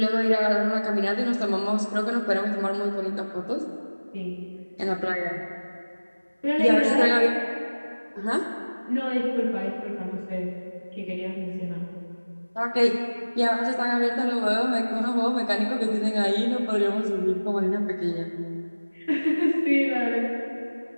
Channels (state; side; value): inverted; both; correlation -1.00